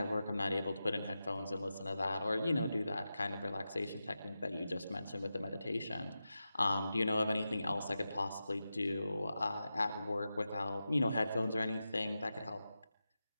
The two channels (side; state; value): both; inverted; correlation -0.91